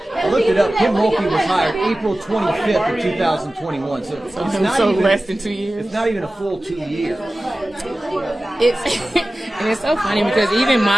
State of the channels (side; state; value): both; normal; correlation 0.96